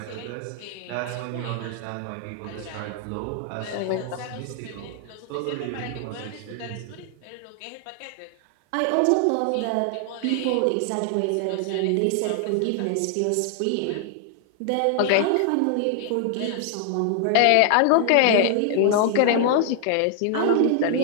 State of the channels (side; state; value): both; different; correlation 0.00